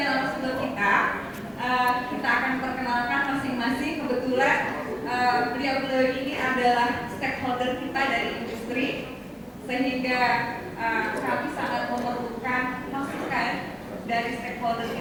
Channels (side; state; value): both; identical; correlation 1.00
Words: kita. Kita akan perkenalkan masing-masing. Kebetulan beliau-beliau ini adalah stakeholder kita dari industri, sehingga kami sangat memerlukan masukan dari stakeholder